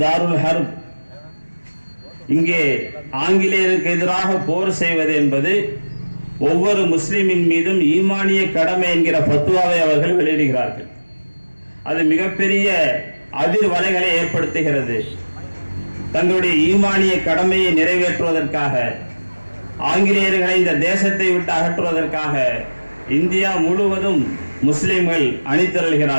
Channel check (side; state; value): both; inverted; correlation -1.00